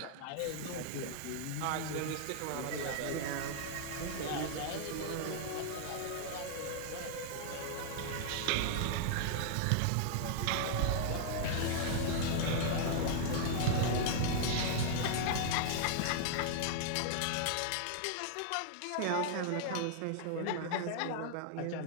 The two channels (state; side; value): different; both; correlation -0.01